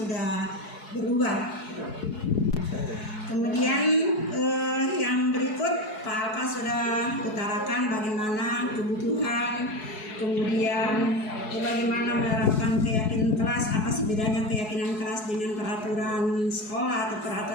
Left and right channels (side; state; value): right; late; 4.7 ms